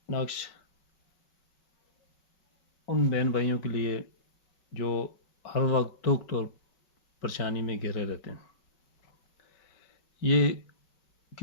नक्श उन बहन भाइयों के लिए जो हर वक्त दुख और परेशानी में घिरे रहते हैं। ये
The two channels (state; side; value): late; right; 4.5 ms